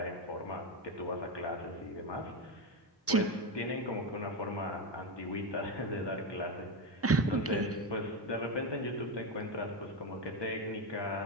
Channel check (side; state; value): both; normal; correlation 0.13